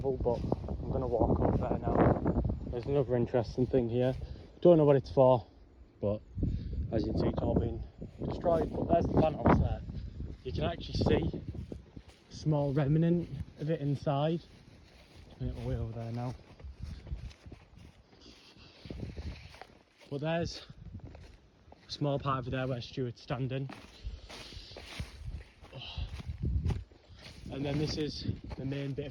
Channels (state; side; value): identical; both; correlation 1.00